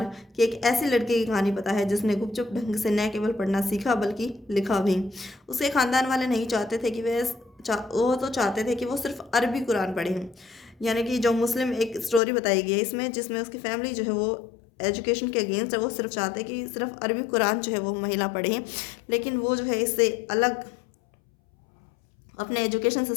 की एक ऐसी लड़की की कहानी पता है जिसने गुपचुप ढंग से न केवल पढ़ना सीखा बल्कि लिखा भी। उसके खानदान वाले नहीं चाहते थे कि वो तो चाहते थे कि वो सिर्फ अरबी कुरान पढ़े। यानी कि जो मुस्लिम एक स्टोरी बताई गई है इसमें, जिसमें उसकी फैमिली जो है वो एजुकेशन के अगेंस्ट है। वो सिर्फ चाहते कि सिर्फ अरबी कुरान जो है वो महिला पढ़े, लेकिन वो जो है इससे अलग अपने एजुकेशन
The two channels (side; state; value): right; drops out; at 12.2 s